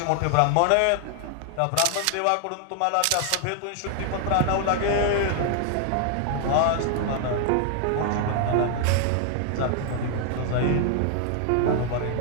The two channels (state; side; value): different; both; correlation 0.00